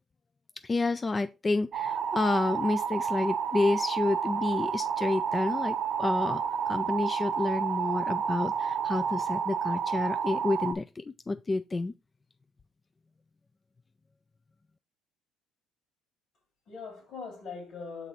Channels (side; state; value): both; normal; correlation 0.83